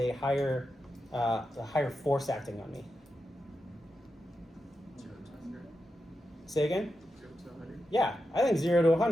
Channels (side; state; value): both; normal; correlation 0.88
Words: higher force acting on me? 0 to 100. Say again? 0 to 100. Yeah, I think 0 to